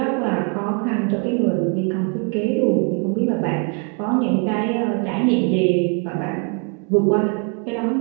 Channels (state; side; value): quieter; left; 38.1 dB